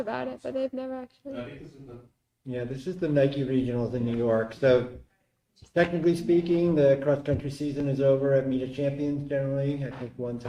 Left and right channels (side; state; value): both; identical; correlation 1.00